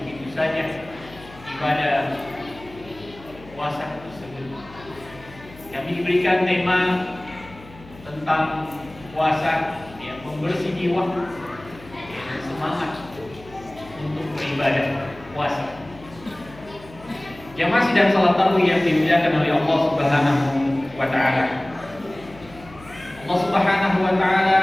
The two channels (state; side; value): noise; left; hum, 20 dB below the sound